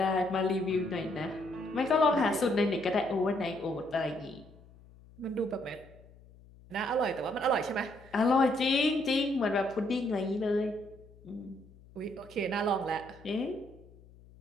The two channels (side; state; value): left; noise; hum, 23 dB below the sound